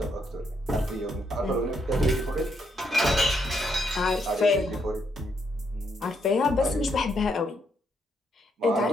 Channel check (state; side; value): normal; both; correlation 0.76